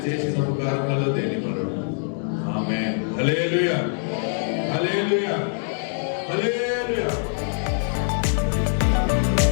చేసిన ఉపకారములలో దేని మరుడు. ఆమేన్. హల్లెలూయా, హల్లెలూయా, హల్లెలూయా.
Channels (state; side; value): silent; right; digital silence